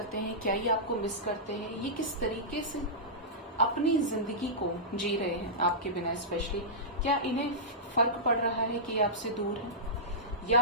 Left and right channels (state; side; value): normal; both; correlation -0.16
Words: हैं, क्या ये आपको मिस करते हैं, ये किस तरीके से अपनी जिंदगी को जी रहे हैं आपके बिना, स्पेशली क्या इन्हें फर्क पड़ रहा है कि ये आपसे दूर है, या